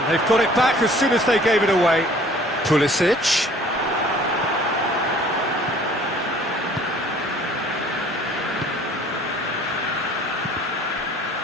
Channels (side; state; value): both; normal; correlation 0.53